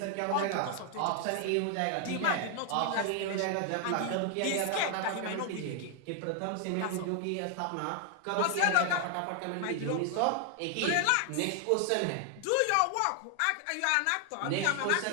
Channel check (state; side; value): different; both; correlation 0.00